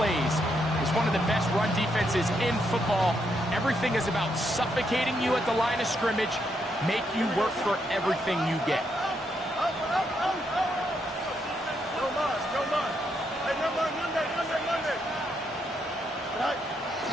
It's one of the best run defenses in football. Everything is about suffocating you at the line of scrimmage, make you work for everything you get.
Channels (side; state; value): both; normal; correlation 0.78